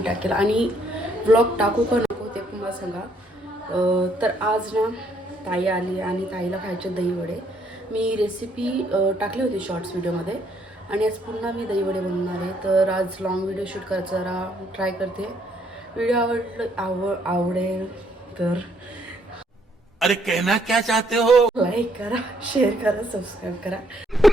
टाकेल. आणि ब्लॉग टाकू का नको ते पण मला सांगा. तर आज ना ताई आली आणि ताईला खायचे दहीवडे. मी रेसिपी टाकली होती शॉर्ट्स व्हिडिओमध्ये आणि आज पुन्हा मी दहीवडे बनवणार आहे. तर आज लॉंग व्हिडिओ शूट करायचा जरा ट्राय करते. व्हिडिओ आवडेल तर अरे कहना क्या चाहते हो? लाईक करा, शेअर करा, सबस्क्राईब करा.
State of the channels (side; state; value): both; normal; correlation 0.68